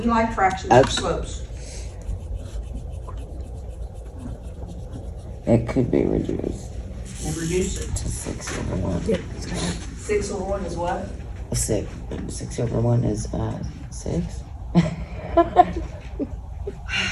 like fractions Okay. or slopes. It could be reduced And reduce it. to 6 over 1. Yep, it's kind 6 over 1 is what? 6 over 1 is 6.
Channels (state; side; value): identical; both; correlation 1.00